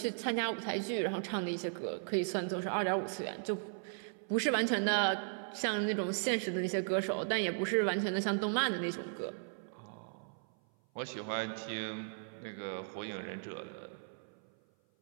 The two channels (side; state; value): left; silent; 53 dB below the other